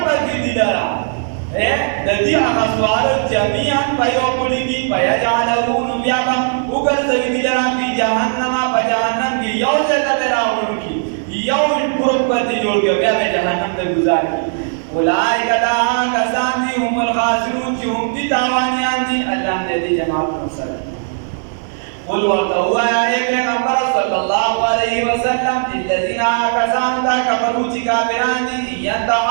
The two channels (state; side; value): silent; left; 56 dB below the other